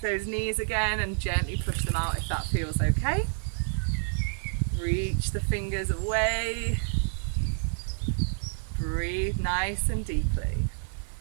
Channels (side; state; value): left; silent; digital silence